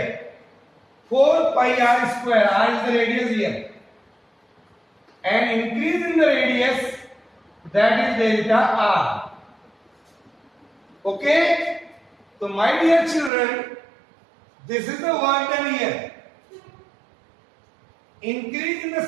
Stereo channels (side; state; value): left; drops out; at 13.3 s